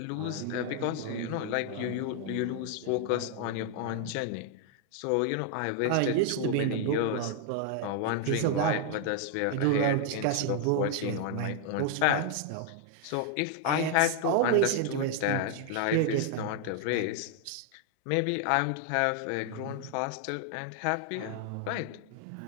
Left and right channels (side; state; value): both; different; correlation 0.00